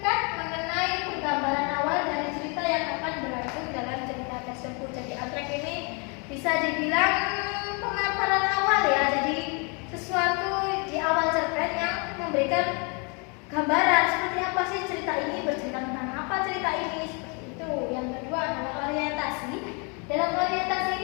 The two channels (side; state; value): right; quieter; 33.8 dB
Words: dibilang pemaparan awal ya. Jadi sesuatu di awal cerpen yang memberikan gambaran seperti apa sih cerita ini, bercerita tentang apa cerita ini, seperti itu. Yang kedua adalah orientasi. Dalam orientasi